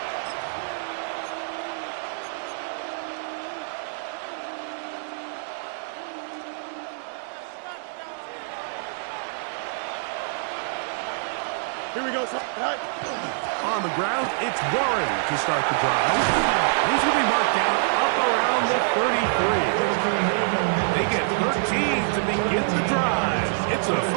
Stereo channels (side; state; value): left; silent; digital silence